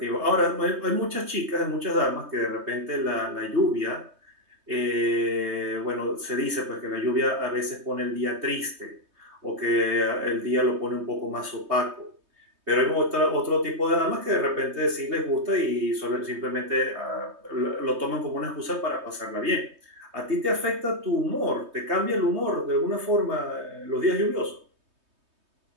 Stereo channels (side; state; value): left; late; 3.2 ms